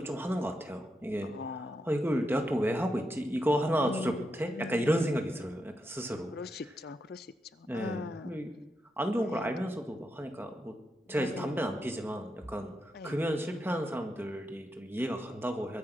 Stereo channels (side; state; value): both; normal; correlation 0.85